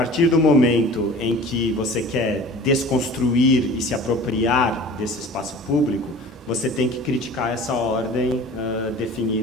do momento em que você quer desconstruir e se apropriar desse espaço público, você tem que criticar essa ordem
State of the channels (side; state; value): both; normal; correlation 0.42